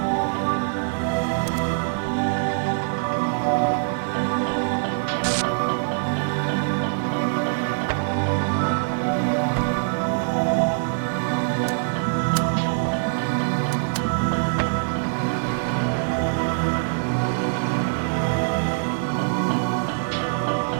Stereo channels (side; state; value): left; silent; digital silence